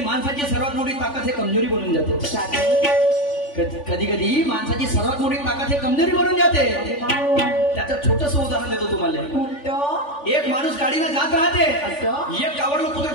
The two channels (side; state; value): right; late; 3.4 ms